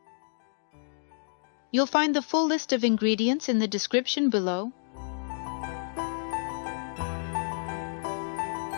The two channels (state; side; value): silent; right; digital silence